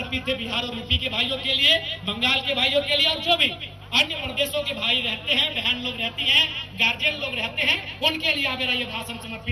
है बिहार और यूपी के भाइयों के लिए, बंगाल के भाइयों के लिए, और जो भी अन्य प्रदेशों के भाई रहते हैं, बहन लोग रहती हैं, गार्जियन लोग रहते हैं, उनके लिए मेरा ये भाषण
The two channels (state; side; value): identical; both; correlation 1.00